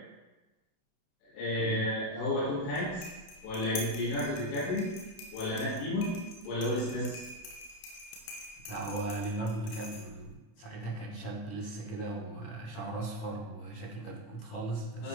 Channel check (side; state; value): right; late; 29 ms